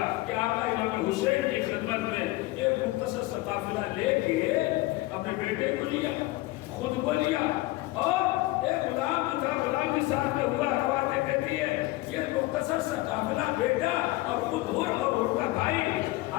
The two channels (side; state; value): right; quieter; 19.5 dB